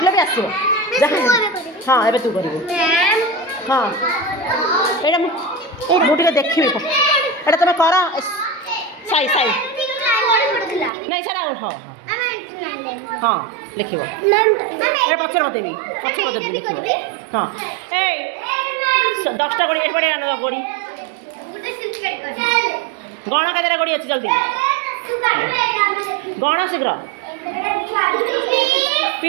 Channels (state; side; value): drops out; left; at 10.9 s